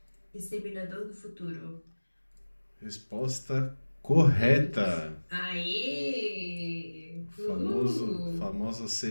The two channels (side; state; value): both; inverted; correlation -1.00